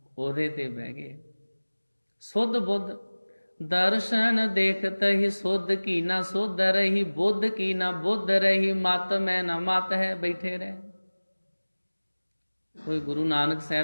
ਉਹਦੇ ਤੇ ਬਹਿ ਗਏ। ਸੁੱਧ ਬੁੱਧ ਦਰਸ਼ਨ ਦੇਖਤ ਹੀ ਸੁੱਧ ਕੀ ਨਾ ਸੁੱਧ ਰਹੀ, ਬੁੱਧ ਕੀ ਨਾ ਬੁੱਧ ਰਹੀ, ਮਤ ਮੈਂ ਨਾ ਮਤ ਹੈ। ਬੈਠੇ ਰਹੇ। ਕੋਈ ਗੁਰੂ ਨਾਨਕ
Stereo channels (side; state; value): both; inverted; correlation -1.00